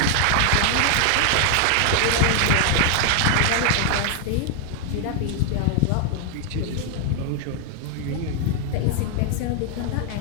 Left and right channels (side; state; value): both; different; correlation 0.00